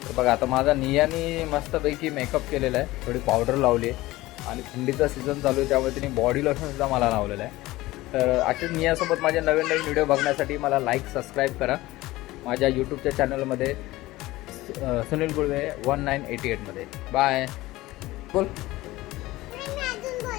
तर बघा आता माझा नियाने मस्तपैकी मेकअप केलेला आहे, थोडी पावडर लावली आहे आणि थंडीचा सीझन चालू आहे त्यामुळे तिने बॉडी लोशनसुद्धा मला लावलेलं आहे. तर अशीच नियासोबत माझे नवीन नवीन व्हिडिओ बघण्यासाठी मला लाईक सबस्क्राईब करा माझ्या यूट्यूबच्या चॅनलमध्ये सुनील गुळवे 1988 मध्ये. बाय. बोल.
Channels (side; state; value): right; quieter; 18.4 dB